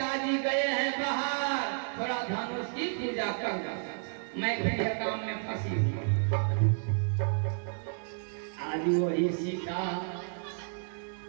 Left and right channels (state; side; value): silent; left; 57 dB below the other